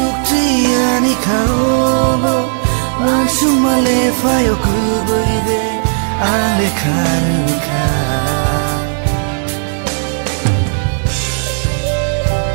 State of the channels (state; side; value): silent; left; digital silence